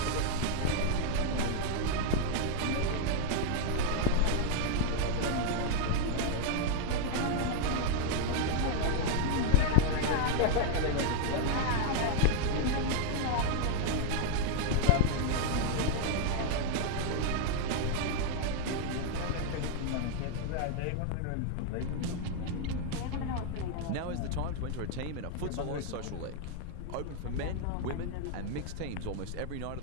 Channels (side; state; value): both; different; correlation 0.00